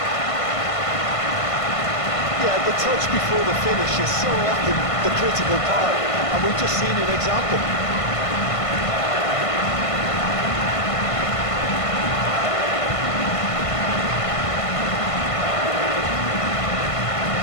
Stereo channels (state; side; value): late; right; 1.5 ms